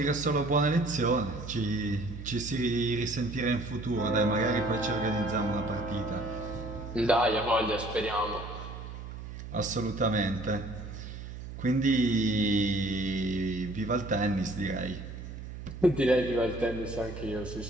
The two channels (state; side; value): noise; right; hum, 10 dB below the sound